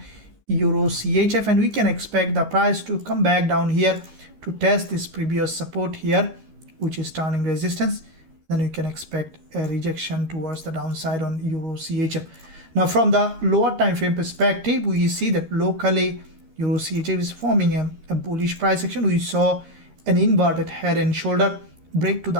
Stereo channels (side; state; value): left; late; 13 ms